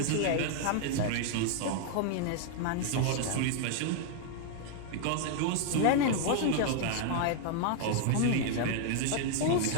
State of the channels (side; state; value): both; different; correlation 0.00